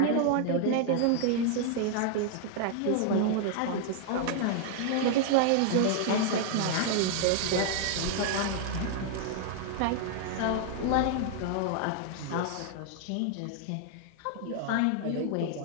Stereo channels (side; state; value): both; different; correlation 0.00